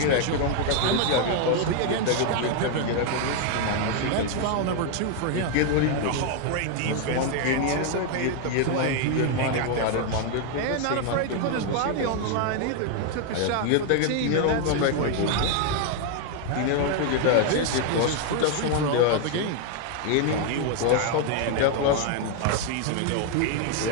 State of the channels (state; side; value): different; both; correlation 0.01